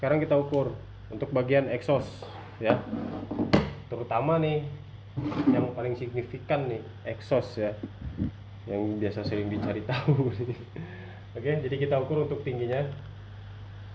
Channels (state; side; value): identical; both; correlation 1.00